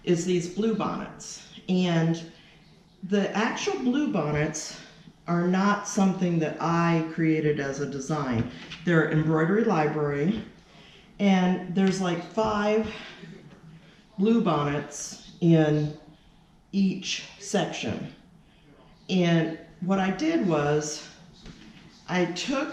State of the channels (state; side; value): identical; both; correlation 1.00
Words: is these blue bonnets. And the actual blue bonnets are not something that I created as a design. They're Embroidery Library, and there's like 5 blue bonnets in each section. And what I did was I